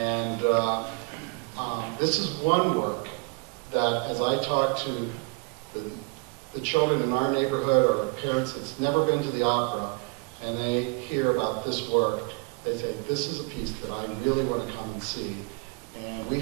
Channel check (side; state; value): left; quieter; 31.3 dB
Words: this is one work that, as I talk to the children in our neighborhood or parents that's never been to the opera, and they hear about this work, they say, this is a piece that I really want to come and see. And we